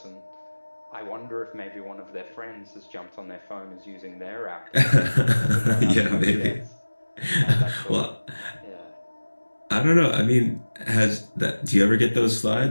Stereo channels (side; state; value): both; inverted; correlation -1.00